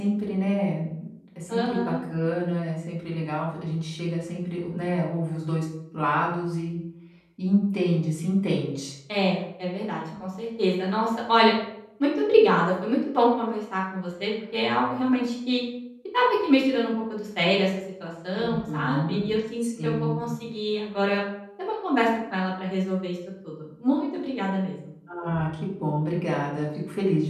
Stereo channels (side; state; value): both; identical; correlation 1.00